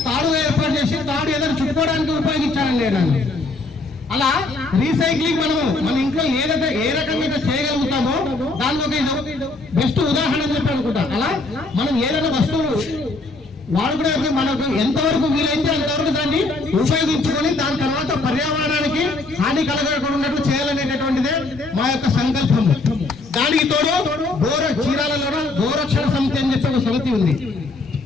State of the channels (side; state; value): right; quieter; 3.2 dB